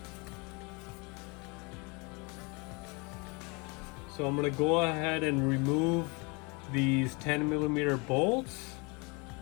So I'm going to go ahead and remove these 10 millimeter bolts,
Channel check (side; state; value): right; quieter; 29.5 dB